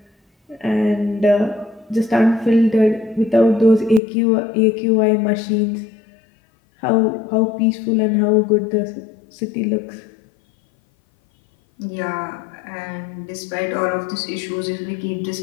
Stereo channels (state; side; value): drops out; right; at 4.0 s